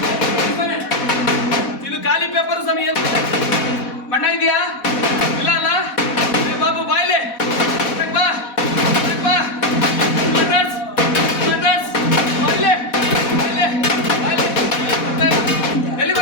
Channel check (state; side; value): late; right; 4.1 ms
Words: ಇದು ಖಾಲಿ ಪೇಪರ್ ಸ್ವಾಮಿ. ಬಣ್ಣ ಇದೆಯಾ? ಇಲ್ಲ ಅಲ್ಲ? ಬಾಬು ಬಾಯ್ಲೆ ಬಾ ಬಾ. ಎಲ್ಲಿ